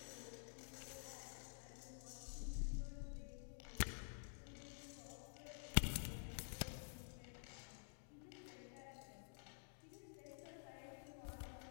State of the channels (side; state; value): right; silent; digital silence